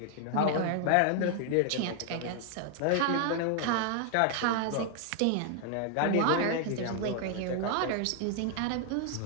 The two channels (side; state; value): both; different; correlation 0.00